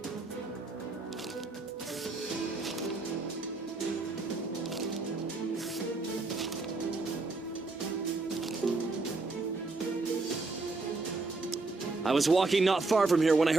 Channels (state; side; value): quieter; left; 3.5 dB